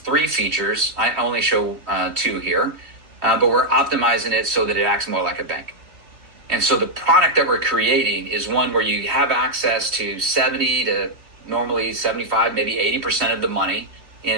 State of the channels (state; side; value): late; left; 3.2 ms